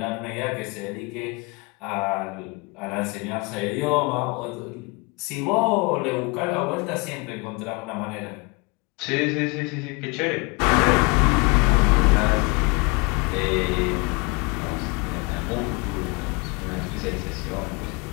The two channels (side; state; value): right; quieter; 28.1 dB